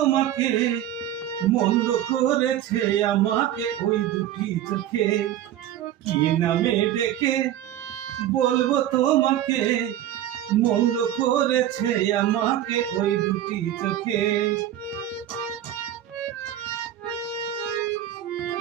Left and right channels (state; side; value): quieter; left; 11.9 dB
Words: মন্দ করেছে আমাকে ওই দুটি চোখে। কি নামে ডেকে বলবো তোমাকে, মন্দ করেছে আমাকে ওই দুটি চোখে।